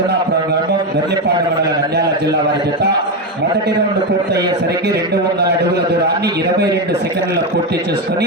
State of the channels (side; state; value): both; normal; correlation 0.10